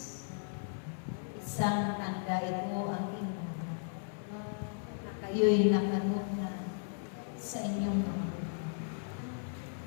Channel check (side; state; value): right; silent; 54 dB below the other